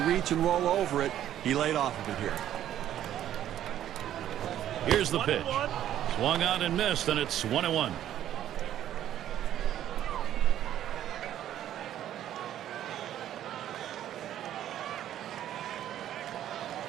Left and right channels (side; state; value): left; quieter; 11.5 dB